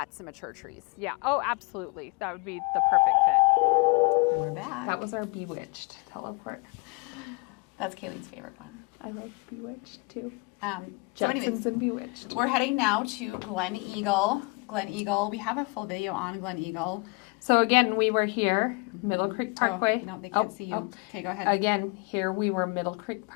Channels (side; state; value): right; quieter; 28.9 dB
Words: and mature trees. Yeah, oh, absolutely. That would be the perfect fit. We're back. That was our Bewitched teleport. That's Kayleen's favorite one. I love Bewitched too. So anyways, Jetsons and Bewitched. we're heading now to Gleneagle. Gleneagle, we have a full video on Gleneagle. So again, we were here, Middle Creek Parkway. Oh, no, they can't see you. Okay, go ahead. Again, here we were Middle Creek